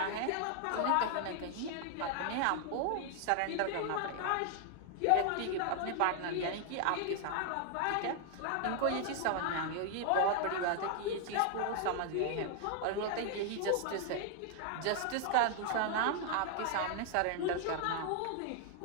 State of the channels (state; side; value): different; both; correlation 0.00